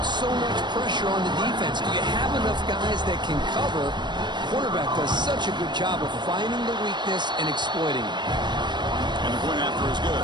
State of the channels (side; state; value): left; late; 0.22 ms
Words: so much pressure on the defense. Do you have enough guys that can cover? Quarterback does such a good job of finding the weakness and exploiting it. And the point after is